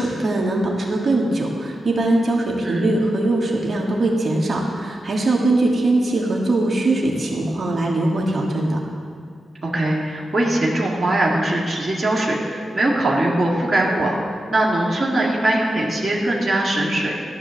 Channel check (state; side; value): normal; both; correlation 0.90